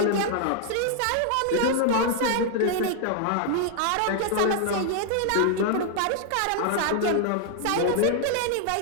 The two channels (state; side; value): different; both; correlation 0.00